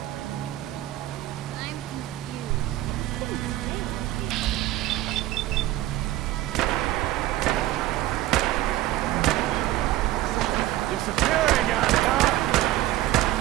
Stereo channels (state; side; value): quieter; left; 15.4 dB